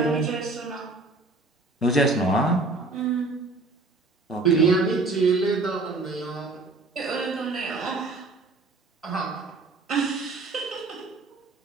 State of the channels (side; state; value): left; quieter; 3.3 dB